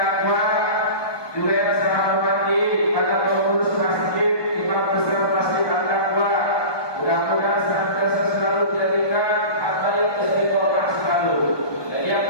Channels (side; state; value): right; late; 1.2 ms